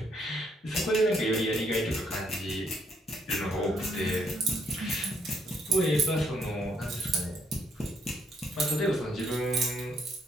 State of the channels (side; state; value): both; normal; correlation 0.72